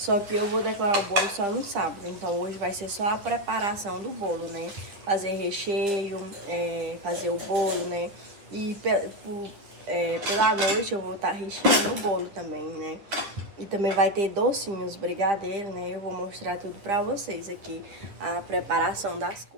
que eu vou decorar o bolo só no sábado. Então hoje vai ser só a preparação do bolo, né? Fazer recheio, fazer o bolo, né? E pela noite eu vou estar recheando o bolo também, né? E também vai ter docinhos, brigadeiro, né? Eu vou mostrar tudo pra vocês aqui, a preparação das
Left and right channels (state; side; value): late; left; 10 ms